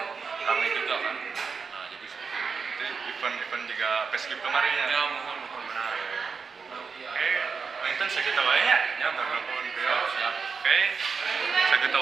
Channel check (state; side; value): quieter; left; 5.4 dB